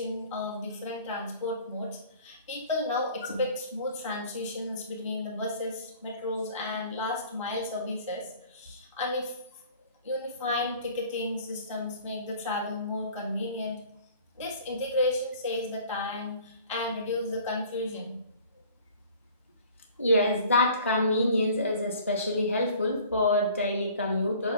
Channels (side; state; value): both; inverted; correlation -0.50